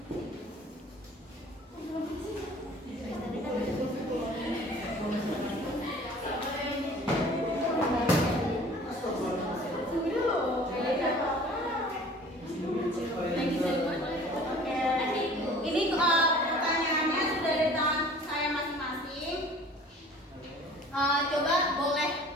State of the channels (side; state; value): both; normal; correlation 0.48